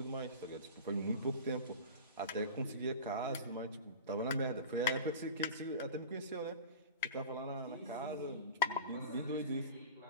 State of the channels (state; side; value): inverted; both; correlation -0.33